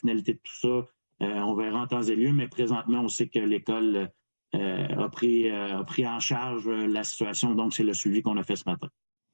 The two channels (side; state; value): both; inverted; correlation -1.00